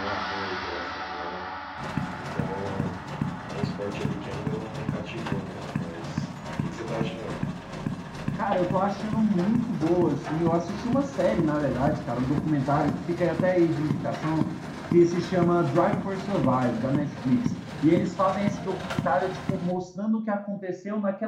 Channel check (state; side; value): identical; both; correlation 1.00